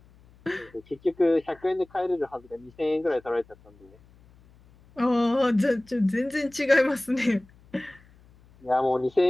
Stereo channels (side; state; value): left; noise; hum, 27 dB below the sound